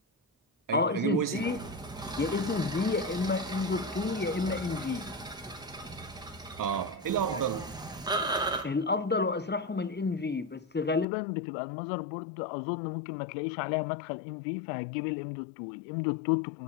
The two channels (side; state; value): right; drops out; at 11.1 s